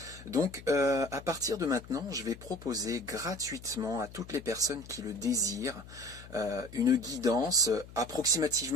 Donc à partir de maintenant, je vais proposer gratuitement à toutes les personnes qui le désirent une guidance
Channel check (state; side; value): noise; left; hum, 17 dB below the sound